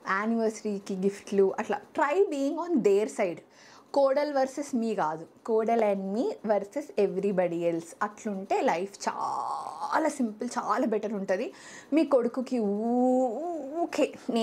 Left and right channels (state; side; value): identical; both; correlation 1.00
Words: యానివర్సరీకి గిఫ్ట్లు, అట్లా try being on their side. కోడల్ వర్సెస్ మీ కాదు, కోడల్ అండ్ మీ వర్సెస్ ఎవ్రీబడి ఎల్స్. అట్లుంటే లైఫ్ చాలా సింపుల్, చాలా బెటర్ ఉంటుంది. మీ కొడుకుకి ఊకే